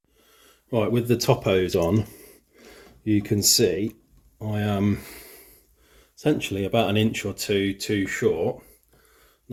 Right, with the top hose on, you can see I am essentially about an inch or two too short.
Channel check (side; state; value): both; identical; correlation 1.00